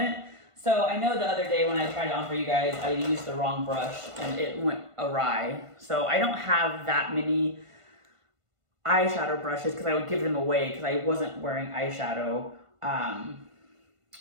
So I know the other day when I tried it on for you guys, I used the wrong brush and it went awry. So I don't have that many eyeshadow brushes because I would give them away because I wasn't wearing eyeshadow.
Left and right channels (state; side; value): late; left; 1.5 ms